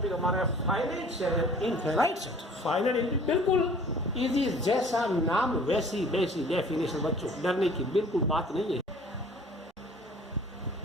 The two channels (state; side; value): normal; both; correlation 0.50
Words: हमारा finite set and infinite set. Finite बिल्कुल इजी, जैसा नाम वैसी डेफिनेशन, बच्चों डरने की बिल्कुल बात नहीं है।